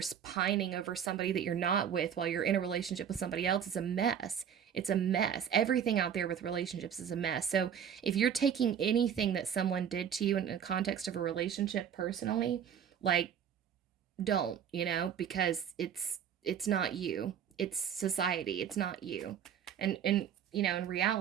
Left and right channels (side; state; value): left; quieter; 8.4 dB